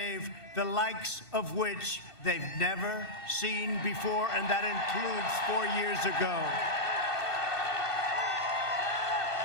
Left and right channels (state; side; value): late; right; 2.6 ms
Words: the likes of which they've never seen before, and that includes 4 years ago.